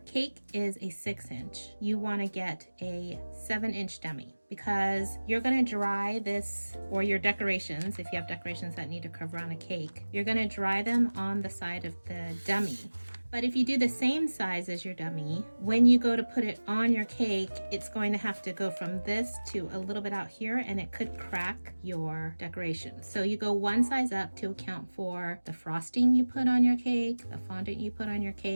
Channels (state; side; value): inverted; both; correlation -1.00